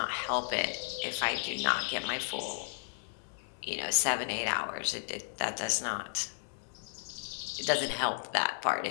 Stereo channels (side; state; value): right; silent; digital silence